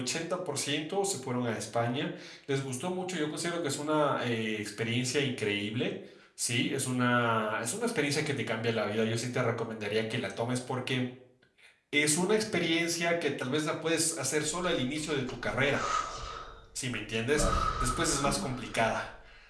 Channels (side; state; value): both; identical; correlation 1.00